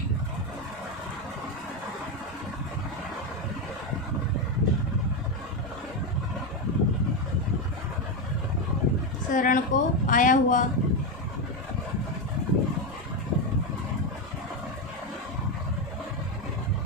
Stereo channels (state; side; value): normal; both; correlation 0.10